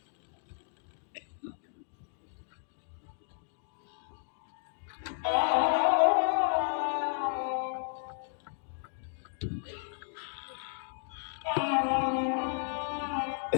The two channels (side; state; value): right; silent; digital silence